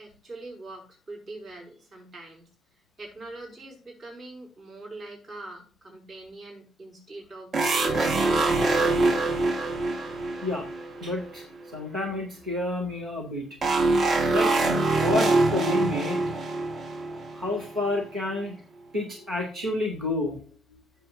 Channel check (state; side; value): normal; both; correlation 0.76